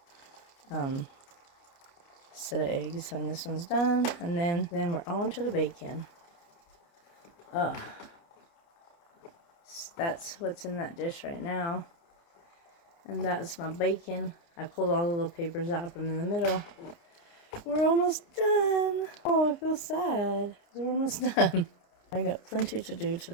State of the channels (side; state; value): right; late; 29 ms